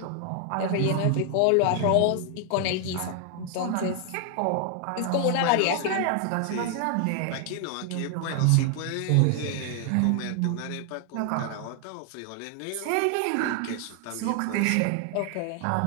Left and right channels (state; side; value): different; both; correlation 0.00